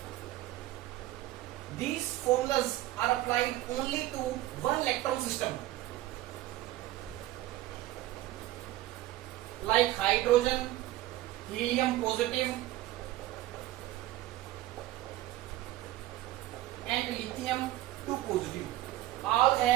These formulas are applied only to one electron system, like hydrogen, helium positive and lithium 2 positive. All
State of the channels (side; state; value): left; quieter; 15.6 dB